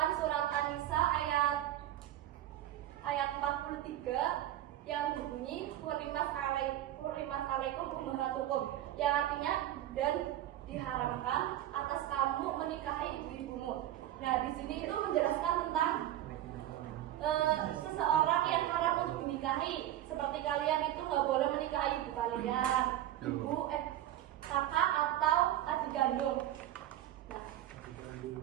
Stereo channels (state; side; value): quieter; left; 13.0 dB